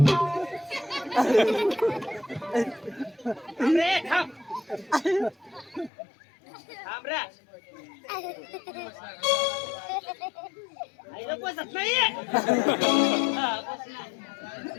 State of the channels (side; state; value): right; drops out; at 5.9 s